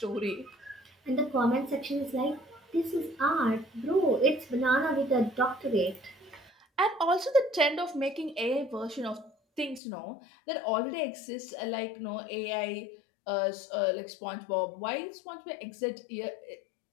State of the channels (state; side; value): drops out; right; at 9.8 s